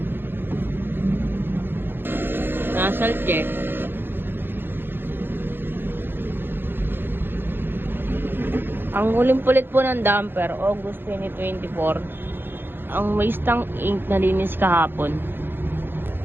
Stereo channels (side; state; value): left; late; 0.10 ms